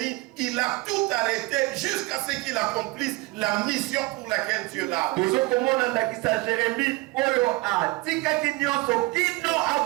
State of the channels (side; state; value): left; quieter; 22.4 dB